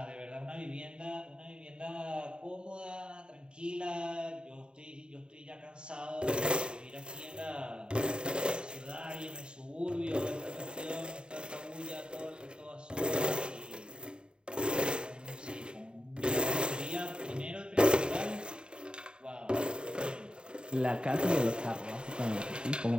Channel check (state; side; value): late; left; 0.051 ms